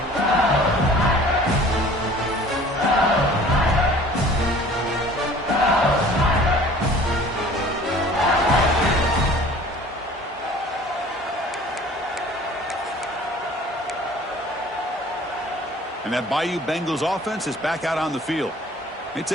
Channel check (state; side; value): normal; both; correlation 0.48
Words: And that Bayou Bengals offense is back out on the field. They